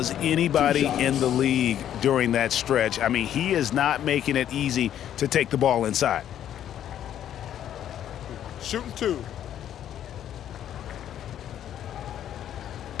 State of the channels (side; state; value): right; quieter; 10.7 dB